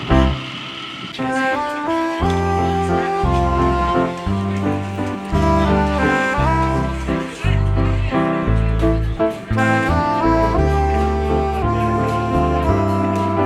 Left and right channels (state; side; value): identical; both; correlation 1.00